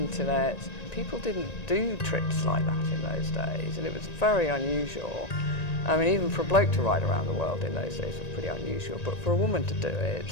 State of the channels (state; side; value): late; right; 1.9 ms